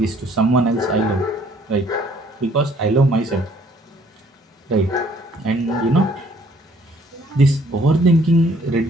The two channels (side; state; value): both; normal; correlation 0.61